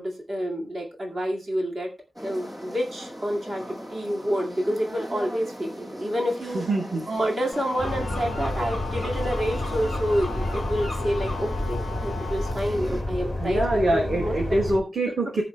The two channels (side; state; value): both; normal; correlation 0.92